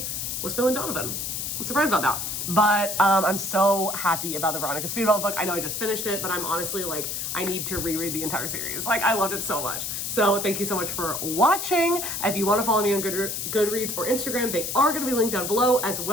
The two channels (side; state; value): left; noise; hiss, 3 dB below the sound